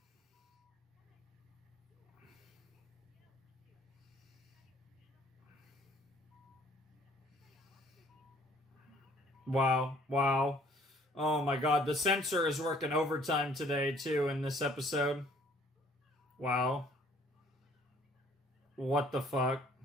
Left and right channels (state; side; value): normal; both; correlation 0.58